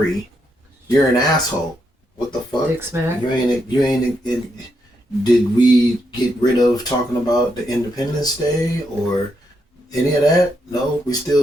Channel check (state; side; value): normal; both; correlation 0.80